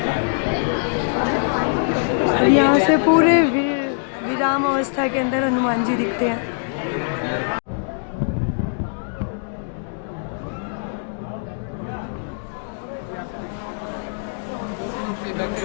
और यहाँ से पूरे विराम अवस्था के अंदर हनुमान जी दिखते हैं।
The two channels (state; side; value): silent; right; digital silence